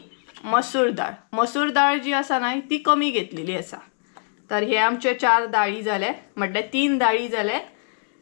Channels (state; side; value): silent; right; 61 dB below the other